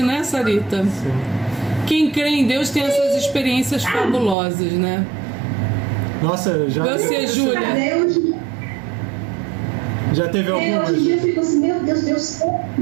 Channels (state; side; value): drops out; left; at 4.4 s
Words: né, Sarita? Sim. Quem crê em Deus tem essas experiências fabulosas, né? Nossa, Você, Júlia? Já teve algumas? Hoje em dia eu fico assim, meu Deus,